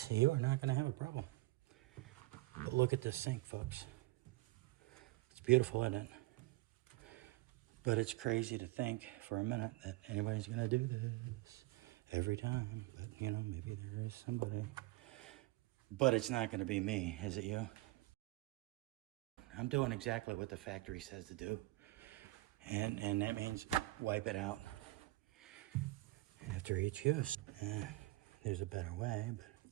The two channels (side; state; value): left; quieter; 19.5 dB